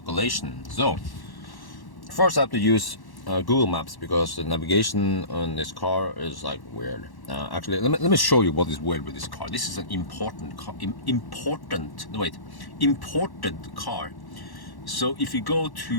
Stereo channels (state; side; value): late; right; 1.1 ms